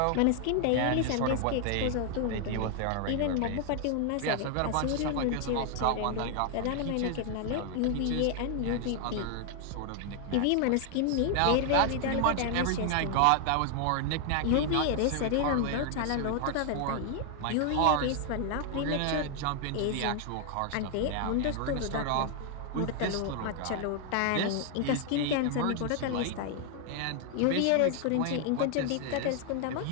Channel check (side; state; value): both; different; correlation 0.00